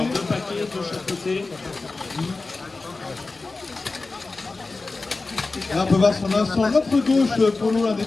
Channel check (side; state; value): right; quieter; 3.6 dB